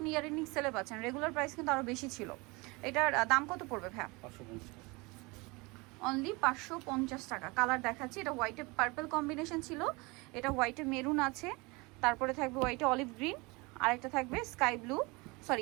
ইয়ারিং সেলে পাচ্ছেন, রেগুলার প্রাইস কিন্তু আরও বেশি ছিল। এটার দাম কত পড়বে ভাইয়া? অনলি 550 টাকা। কালার দেখাচ্ছি। এটা হোয়াইটে পার্পল কম্বিনেশন ছিল, এটা হোয়াইটে মেরুন আছে, তারপরে থাকবে হোয়াইটে অলিভ গ্রিন, আরেকটা থাকবে sky blue,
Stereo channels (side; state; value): left; quieter; 25.9 dB